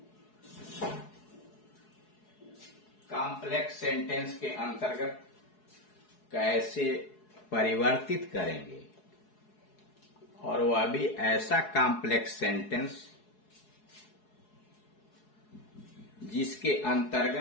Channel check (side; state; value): right; late; 4.7 ms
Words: कॉम्प्लेक्स सेंटेंस के अंतर्गत कैसे परिवर्तित करेंगे और वह भी ऐसा कॉम्प्लेक्स सेंटेंस जिसके